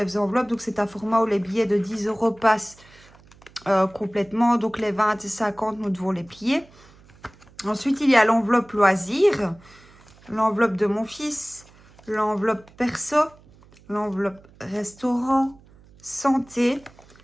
enveloppes, donc c'est un format où les billets de 10 € passent complètement. Donc, les 20 et 50, nous devons les plier. Ensuite, il y a l'enveloppe loisir, l'enveloppe de mon fils, l'enveloppe perso, l'enveloppe restaurant, santé,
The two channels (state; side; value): noise; right; hum, 26 dB below the sound